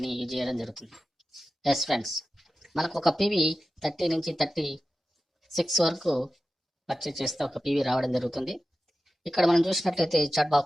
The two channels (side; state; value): both; normal; correlation 0.93